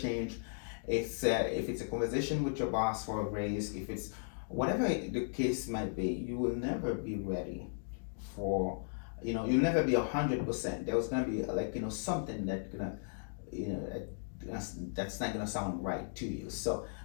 if it's a conversation with your boss for a raise, if it's whatever the case might be, you will never be ready for. You'll never be 100%. There's gonna be something that's gonna, that's not gonna sound right to you. So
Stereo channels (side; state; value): right; silent; digital silence